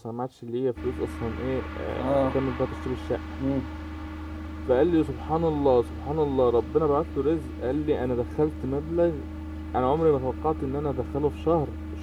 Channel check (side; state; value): both; identical; correlation 1.00